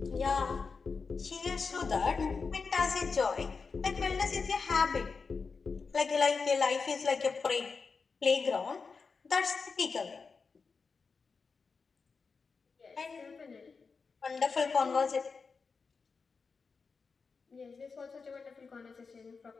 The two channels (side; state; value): right; quieter; 4.9 dB